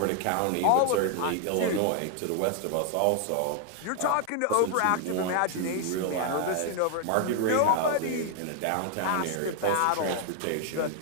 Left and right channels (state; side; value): different; both; correlation 0.00